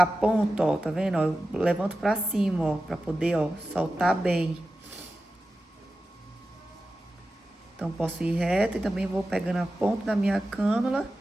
ponta, ó, tá vendo? Ó, eu levanto pra cima, ó, pra poder, ó, soltar bem. Então, posso ir reto e também vou pegando a ponta da minha cânula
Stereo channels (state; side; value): normal; both; correlation 0.93